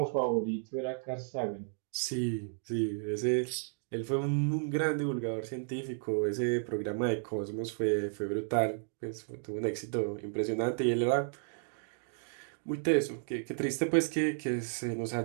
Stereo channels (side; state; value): left; silent; digital silence